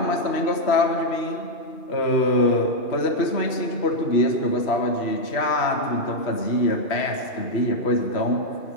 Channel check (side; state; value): right; late; 3.0 ms